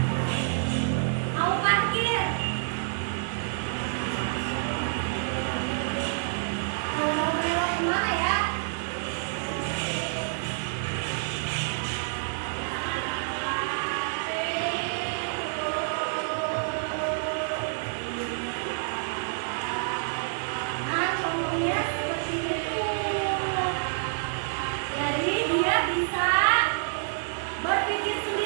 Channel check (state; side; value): silent; left; 56 dB below the other